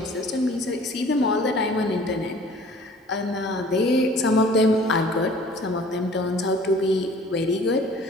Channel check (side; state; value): both; normal; correlation 0.50